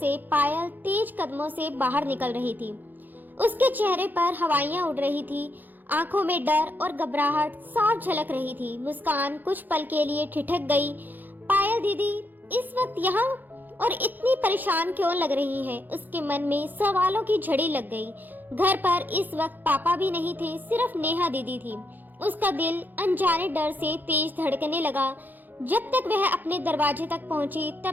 पायल तेज कदमों से बाहर निकल रही थी। उसके चेहरे पर हवाइयां उड़ रही थी, आंखों में डर और घबराहट साफ झलक रही थी। मुस्कान कुछ पल के लिए ठिठक गई। पायल दीदी इस वक्त यहाँ और इतनी परेशान क्यों लग रही है? उसके मन में सवालों की झड़ी लग गई। घर पर इस वक्त पापा भी नहीं थे, सिर्फ नेहा दीदी थी। उसका दिल अनजाने डर से तेज धड़कने लगा। जब तक वह अपने दरवाजे तक पहुंची,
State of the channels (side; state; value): left; late; 0.086 ms